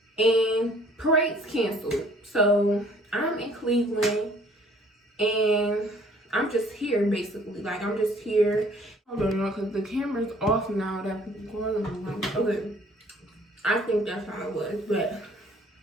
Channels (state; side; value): normal; both; correlation 0.57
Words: and parades canceled. So I'm in Cleveland, and I'm just here, basically. Like, I'm just here. I don't know, because the camera's off now that people going on. Like, okay, I think that's how it was, but